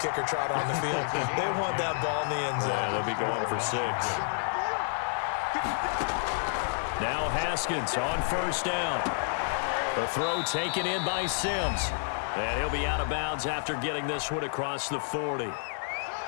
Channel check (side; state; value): right; silent; 58 dB below the other